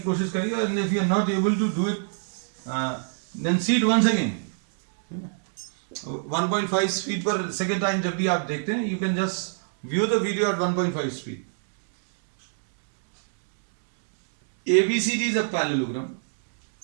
करिए, and if you are not able to do it then see it once again. 1.5 speed पर सेकेंड टाइम जब भी आप देखते हैं, you can just view the video at 1.5 speed. ABCD is a parallelogram.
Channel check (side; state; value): left; silent; digital silence